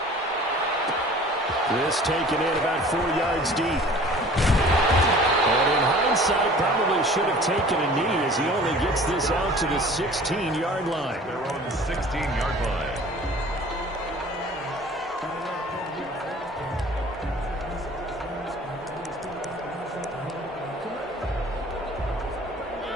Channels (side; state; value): both; normal; correlation 0.47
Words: This taken in about 4 yards deep. And in hindsight, probably should have taken a knee as he only gets this out to the 16-yard line. They're on the 16-yard line.